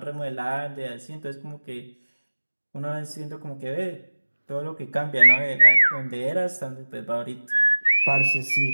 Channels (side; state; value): both; inverted; correlation -1.00